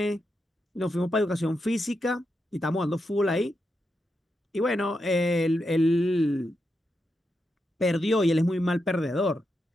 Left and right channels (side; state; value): both; normal; correlation 0.86